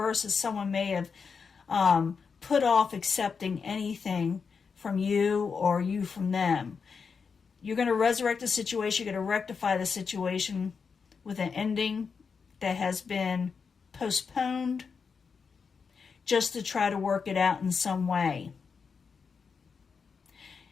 is someone may have put off accepting anything from you or you from them. You're going to resurrect the situation. You're going to rectify the situation with an ending that has been postponed, just to try to work it out in some way.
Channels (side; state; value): right; quieter; 5.6 dB